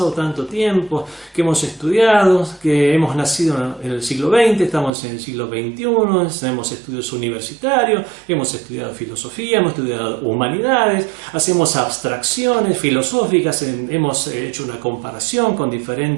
tanto tiempo, que hemos estudiado, que hemos nacido en el siglo XX, estamos en el siglo XXI, hemos estudios universitarios, hemos estudiado filosofía, hemos estudiado humanidades, hacemos abstracciones filosóficas, hemos hecho una comparación con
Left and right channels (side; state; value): left; drops out; at 4.9 s